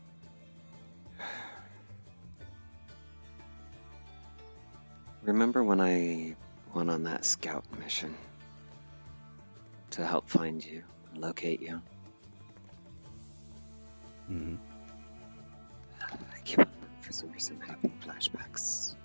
Remember when I went on that scout mission to help find you and locate you? I keep on, for some reason, having flashbacks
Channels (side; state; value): both; inverted; correlation -1.00